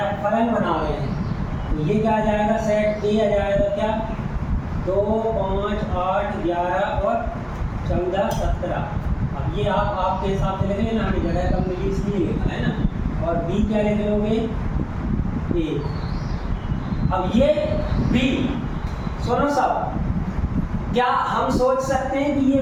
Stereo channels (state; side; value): identical; both; correlation 1.00